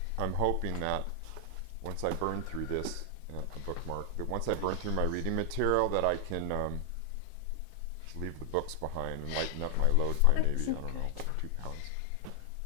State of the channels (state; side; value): different; both; correlation 0.00